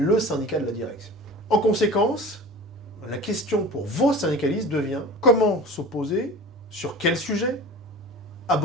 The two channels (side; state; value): both; normal; correlation 0.37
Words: syndicat de la direction. En conséquence, la question pour vos syndicalistes devient comment s'opposer, sur quel sujet, à